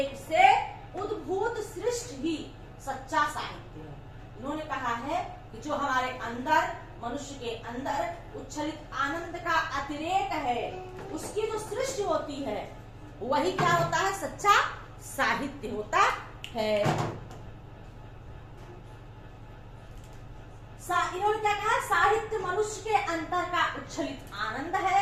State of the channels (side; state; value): both; identical; correlation 1.00